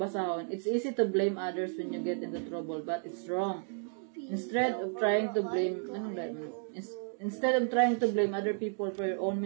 it's easy to blame others when you get into trouble, but it's wrong. Instead of trying to blame other people for your own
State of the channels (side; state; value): left; silent; 56 dB below the other